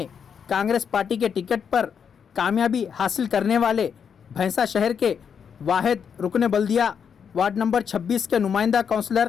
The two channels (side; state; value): right; quieter; 7.1 dB